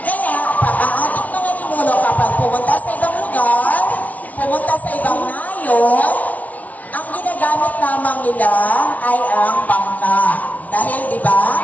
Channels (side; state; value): right; late; 0.071 ms